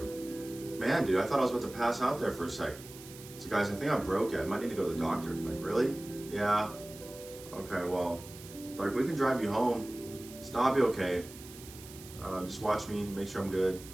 Man, dude, I thought I was about to pass out there for a sec. So guys, I think I broke it. I might need to go to the doctor. Like, really? Yeah. Okay, well, like we can drive you home. It's not be okay. Just watch me, make sure I'm good.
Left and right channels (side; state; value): right; noise; hiss, 17 dB below the sound